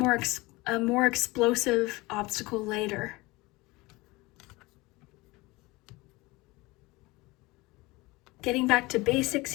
explosive obstacle later. Getting back to basics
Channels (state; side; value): quieter; right; 22.2 dB